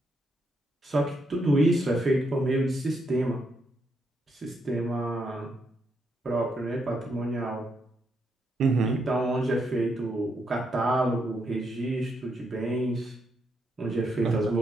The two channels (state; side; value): normal; both; correlation 0.79